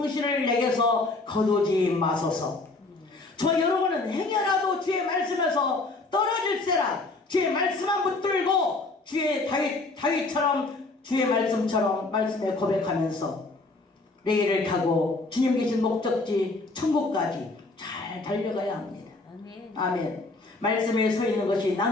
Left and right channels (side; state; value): right; quieter; 3.3 dB